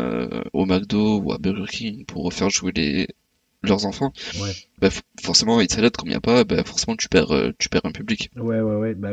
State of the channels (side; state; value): both; identical; correlation 1.00